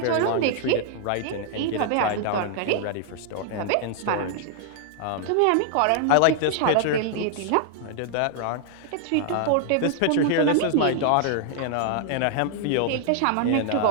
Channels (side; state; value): both; different; correlation 0.00